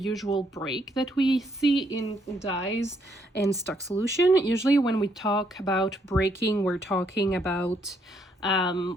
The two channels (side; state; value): both; normal; correlation 0.72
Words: break that we see in dyes and stock solution. Usually when we talk about breaking, we're talking about